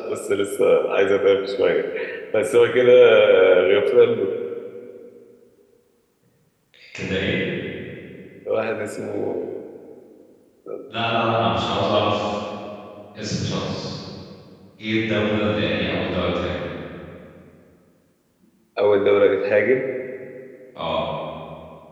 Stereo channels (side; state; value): both; identical; correlation 1.00